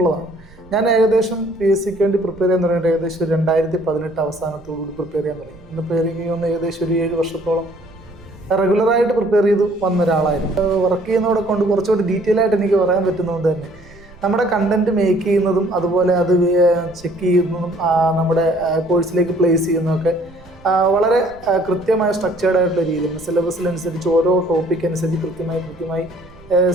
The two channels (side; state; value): right; noise; rumble, 23 dB below the sound